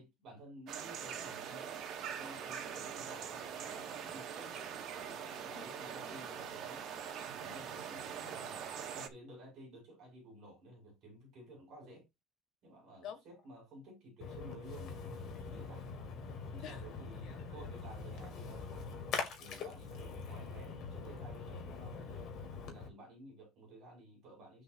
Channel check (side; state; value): both; normal; correlation 0.38